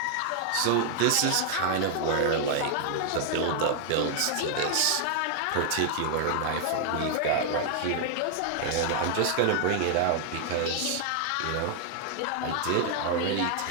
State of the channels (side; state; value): both; different; correlation 0.00